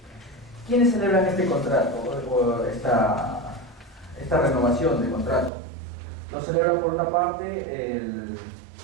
¿Quiénes celebran este contrato o esta renovación de contrato? Lo celebra por una parte el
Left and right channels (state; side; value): drops out; left; at 5.5 s